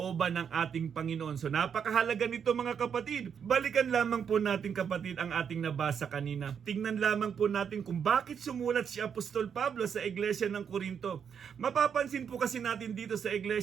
ng ating Panginoon. So napakahalaga nito mga kapatid. Balikan lamang po natin kapatid ang ating nabasa kanina. Tingnan lamang po natin kung bakit sumulat si Apostol Pablo sa Iglesia ng Corinto. Mapapansin po kasi natin dito sa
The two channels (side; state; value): left; quieter; 7.4 dB